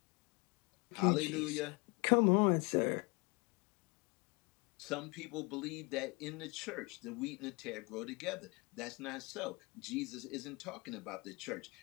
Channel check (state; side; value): quieter; right; 28.1 dB